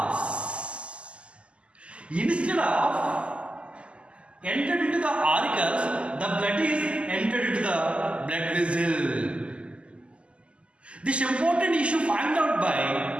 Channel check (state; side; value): late; left; 0.055 ms